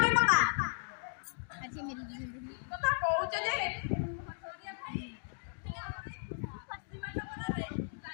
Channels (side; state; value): right; silent; digital silence